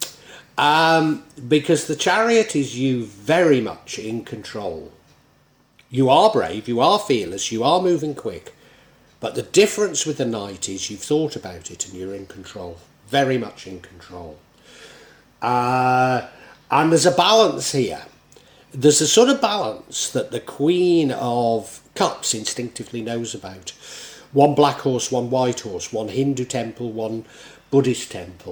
Because the Chariot is you very much in control. You are brave, you are fearless, you are moving quick, but the difference with the Knight is you've thought about it and you're in control, very much in control. And there's a balance here, There's a sort of balance that the Queen of Cups instinctively knows about. One black horse, one white horse, one Hindu temple, one Buddhist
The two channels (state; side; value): identical; both; correlation 1.00